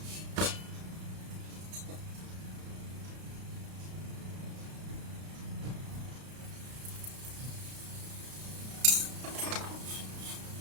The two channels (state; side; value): late; left; 33 ms